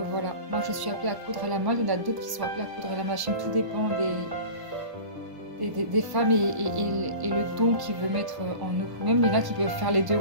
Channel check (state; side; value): late; left; 1.0 ms